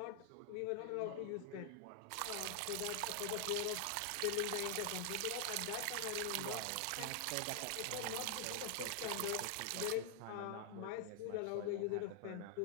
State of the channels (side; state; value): both; different; correlation 0.00